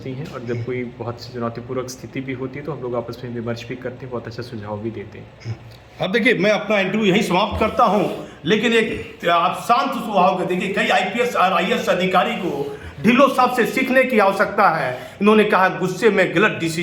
हैं, और जब कोई बहुत चुनौतीपूर्वक स्थिति भी होती है तो हम लोग आपस में विमर्श भी करते हैं, बहुत अच्छा सुझाव भी देते हैं। अब देखिए, मैं अपना इंटरव्यू यहीं समाप्त करता हूं, लेकिन एक आप शांत स्वभाव के देखिए, कई IPS और IAS अधिकारी को ढिल्लों साहब से सीखने की आवश्यकता है। इन्होंने कहा गुस्से में गलत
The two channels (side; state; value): both; identical; correlation 1.00